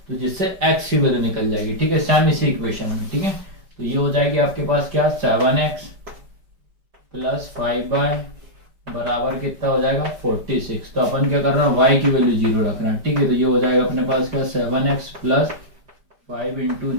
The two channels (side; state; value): left; late; 5.1 ms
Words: तो जिससे x की वैल्यू निकल जाएगी, ठीक है, सेम इसी इक्वेशन में, ठीक है। तो ये हो जाएगी आपके पास क्या 7x प्लस 5y बराबर कितना हो जाएगा 46। तो अपन क्या कर रहे हैं y की वैल्यू 0 रख रहे हैं, ठीक है। तो ये हो जाएगा अपने पास क्या 7x प्लस 5 इंटू